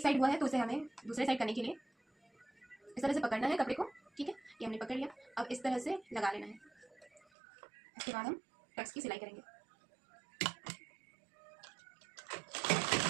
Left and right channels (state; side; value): drops out; left; at 7.2 s